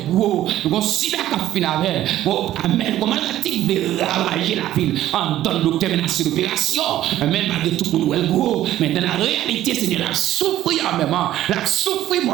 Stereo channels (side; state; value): left; quieter; 13.3 dB